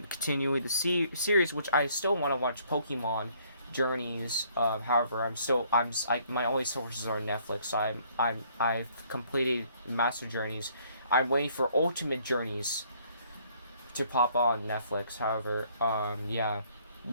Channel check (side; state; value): both; inverted; correlation -0.63